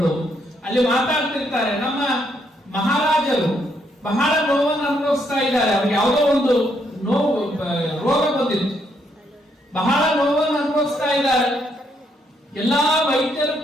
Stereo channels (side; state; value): both; normal; correlation 0.74